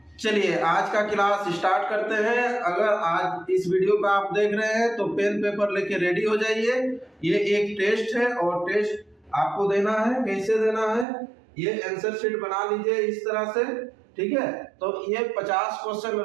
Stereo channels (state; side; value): drops out; left; at 11.1 s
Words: चलिए आज का क्लास स्टार्ट करते हैं। अगर आज इस वीडियो को आप देख रहे हैं तो पेन पेपर लेके रेडी हो जाइए। ये एक टेस्ट है और टेस्ट आपको देना है। कैसे देना है, ये आंसर शीट बना लीजिए इस तरह से, ठीक है। तो ये 50 क्वेश्चन